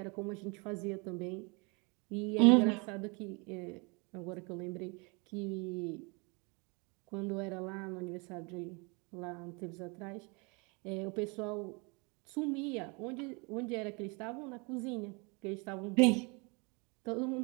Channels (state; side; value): quieter; left; 30.6 dB